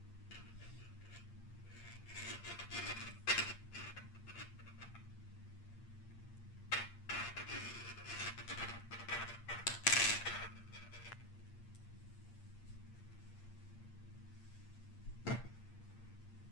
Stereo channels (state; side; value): late; right; 8.6 ms